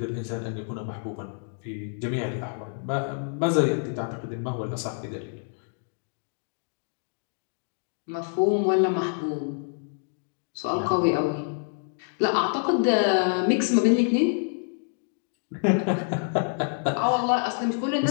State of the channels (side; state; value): right; silent; 58 dB below the other